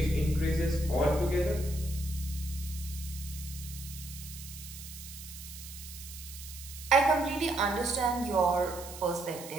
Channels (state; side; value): noise; right; hiss, 13 dB below the sound